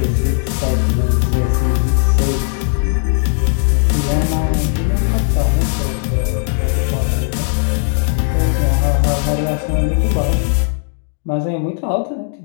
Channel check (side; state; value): right; silent; 58 dB below the other